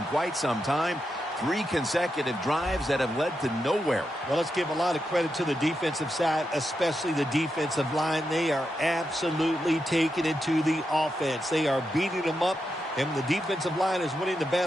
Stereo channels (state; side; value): normal; both; correlation 0.86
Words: quite some time. 3 consecutive drives that have led to nowhere. Well, let's give a lot of credit to the defensive side, especially the defensive line. They are absolutely taking it to the offense. They are beating them up, and when the defensive line is winning the